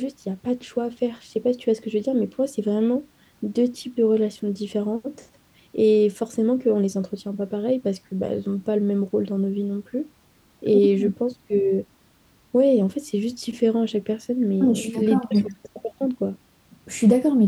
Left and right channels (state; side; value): identical; both; correlation 1.00